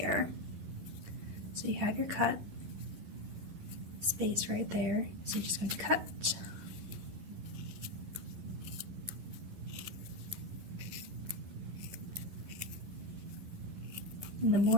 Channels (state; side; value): late; left; 11 ms